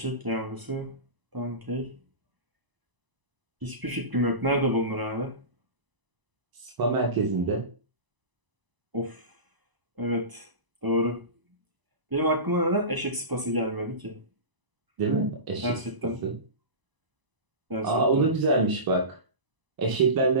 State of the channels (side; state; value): left; late; 1.0 ms